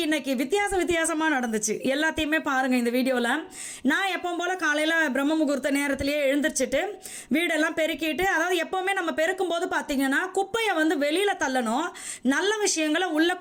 இன்றைக்கி வித்தியாசமாக நடந்துச்சு. எல்லாத்தையுமே பாருங்கள் இந்த வீடியோவில். நான் எப்பவும் போல் காலையில் பிரம்ம முகூர்த்த நேரத்திலேயே எழுந்திரிச்சிட்டு வீடெல்லாம் பெருக்கிட்டு, அதாவது எப்போவுமே நம்ம பெருக்கும்போது பார்த்திங்கன்னா குப்பையை வெளியில் தள்ளணும், நல்ல விஷயங்களை உள்ளே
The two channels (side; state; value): both; identical; correlation 1.00